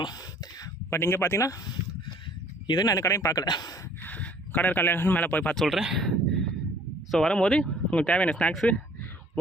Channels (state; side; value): normal; both; correlation 0.56